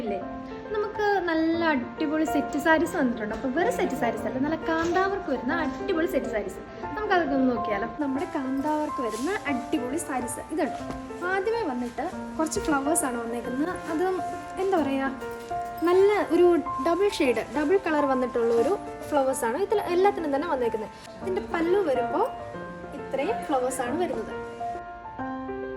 നമുക്ക് നല്ല അടിപൊളി സെറ്റ് സാരീസ് വന്നിട്ടുണ്ട്. അപ്പോൾ വെറും സെറ്റ് സാരീസ് അല്ല, നല്ല കാന്താവർക്ക് വരുന്ന അടിപൊളി സെറ്റ് സാരീസ്. നമുക്കതൊക്കെ ഒന്ന് നോക്കിയാലോ. നമ്മുടെ കാന്താവർക്ക് വരുന്ന അടിപൊളി സാരീസ് ഇതുണ്ട്. ആദ്യമേ വന്നിട്ട് കുറച്ച് ഫ്ലവേഴ്സാണ് വന്നേക്കുന്നത്. അത് എന്താ പറയുക, നല്ല ഒരു ഡബിൾ കളർ വന്നിട്ടുള്ള ഒരു ഫ്ലവേഴ്സാണ് ഇതിൽ എല്ലാത്തിനും തന്നെ വന്നേക്കുന്നത്. ഇതിൻ്റെ പല്ലു വരുമ്പോൾ ഇത്രയും ഫ്ലവേഴ്സാണ് വരുന്നത്.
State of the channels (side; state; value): both; identical; correlation 1.00